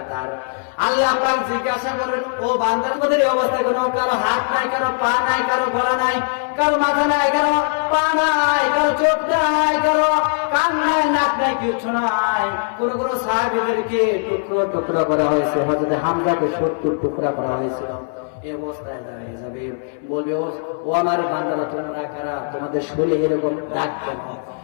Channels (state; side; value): silent; right; digital silence